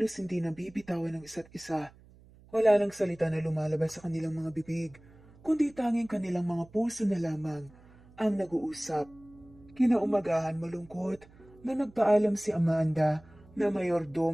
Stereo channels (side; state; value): right; noise; hum, 25 dB below the sound